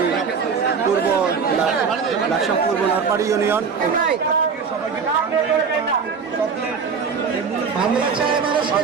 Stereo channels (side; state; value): left; quieter; 5.8 dB